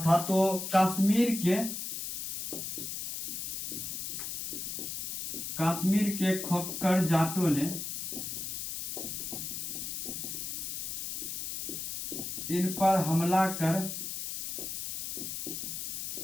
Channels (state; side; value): noise; left; hiss, 4 dB below the sound